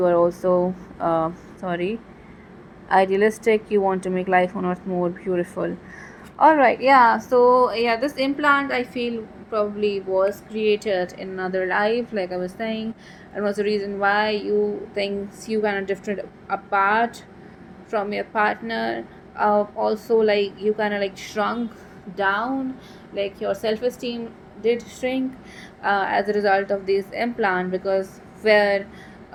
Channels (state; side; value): identical; both; correlation 1.00